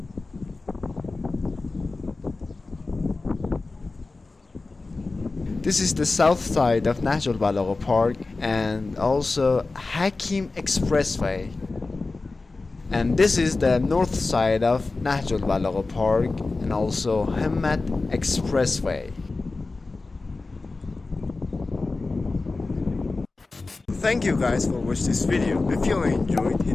This is the south side of Nahjolbalagheh Park and also Hakim Expressway. And this is the north side of Nahjolbalagheh Park and also Hamad Expressway. Thank you guys for watching this video. If you enjoyed,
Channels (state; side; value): quieter; right; 3.6 dB